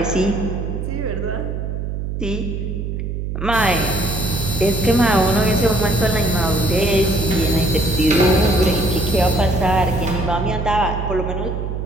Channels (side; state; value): right; noise; hum, 4 dB below the sound